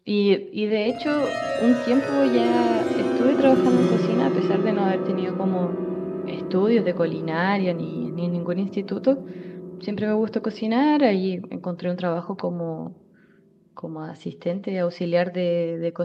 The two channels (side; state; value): both; identical; correlation 1.00